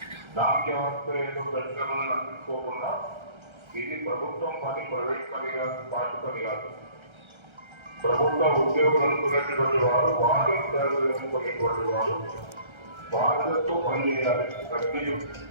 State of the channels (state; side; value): late; left; 1.3 ms